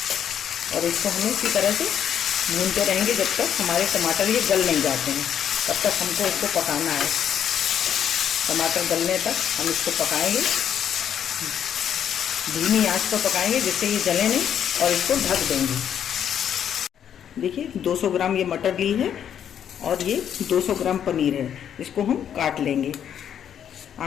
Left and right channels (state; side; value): quieter; right; 9.1 dB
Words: और इसको हमें इसी तरह से भूनते रहेंगे जब तक हमारे टमाटर ये गल नहीं जाते हैं। तब तक हमको इसको पकाना है। टमाटर गलने तक हम इसको पकाएंगे, धीमी आंच पर पकाएंगे जिससे ये जले नहीं, और इसको ढक देंगे। देखिए 200 ग्राम ये मटर ली है और ये 200 ग्राम पनीर है। इसको हम काट लेंगे।